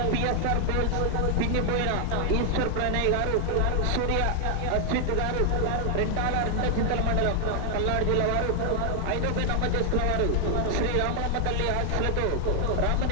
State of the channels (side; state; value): both; different; correlation 0.00